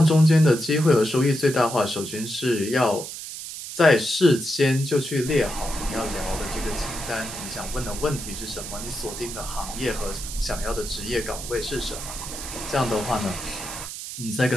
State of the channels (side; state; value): right; noise; hiss, 9 dB below the sound